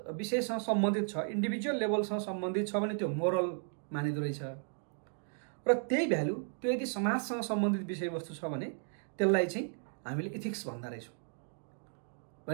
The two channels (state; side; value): silent; left; 55 dB below the other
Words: विषयसँग सम्बन्धित छ, इन्डिभिजुअल लेभलसँग सम्बन्धित छ भने त्यो मोरल मानिँदो रहेछ। र त्यही भ्याल्यु त्यो यदि समाजसँग सम्बन्धित विषयवस्तु छ भने त्यसलाई चाहिँ हामीले इथिक्स भन्दा रहेछौँ।